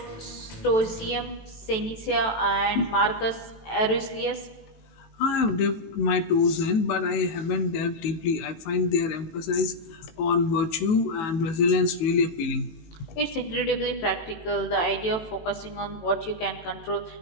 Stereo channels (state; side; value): late; right; 18 ms